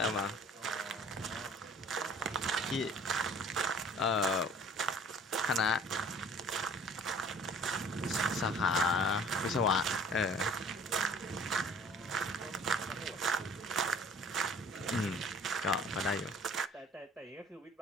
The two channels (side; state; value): both; normal; correlation 0.50